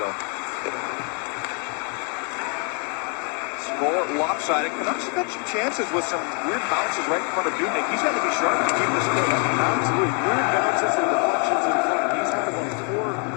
Score lopsided. Canucks have had some chances with some weird bounces right in front of Dubnik. He's got to be sharp to keep this clear. Absolutely. Weird bounces and deflections in front.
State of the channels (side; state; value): right; quieter; 37.9 dB